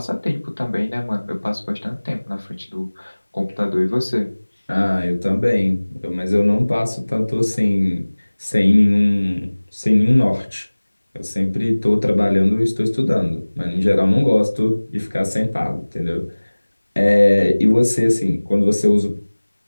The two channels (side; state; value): both; inverted; correlation -1.00